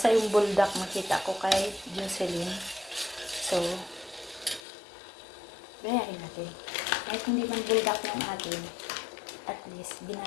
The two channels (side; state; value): right; drops out; at 4.6 s